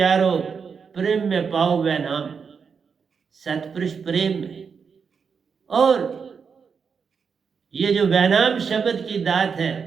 प्रेम में पाओ वह नाम। सतपुरुष प्रेम में, और ये जो वैनाम शब्द की दात है,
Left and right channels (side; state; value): left; quieter; 6.0 dB